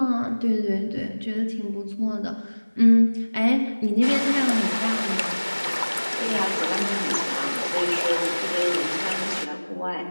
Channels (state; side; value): inverted; both; correlation -1.00